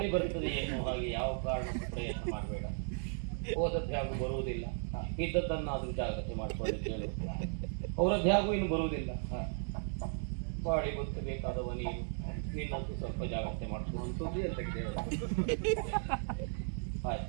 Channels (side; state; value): left; silent; 54 dB below the other